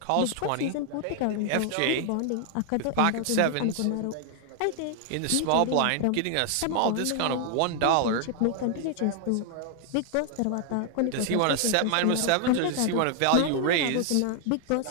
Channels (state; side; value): different; both; correlation 0.00